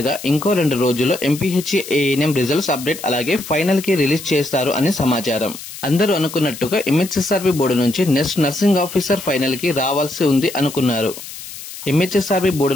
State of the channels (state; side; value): noise; left; hiss, 13 dB below the sound